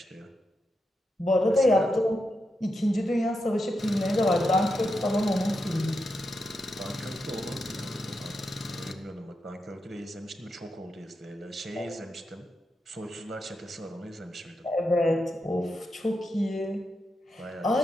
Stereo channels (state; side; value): normal; both; correlation 0.86